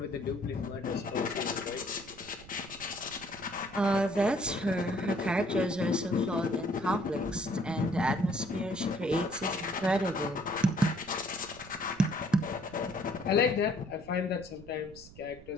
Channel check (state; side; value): noise; right; rumble, 19 dB below the sound